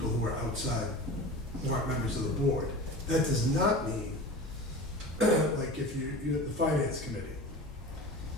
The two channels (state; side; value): normal; both; correlation 0.34